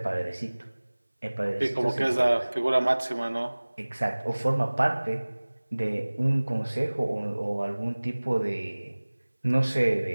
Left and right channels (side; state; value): both; inverted; correlation -1.00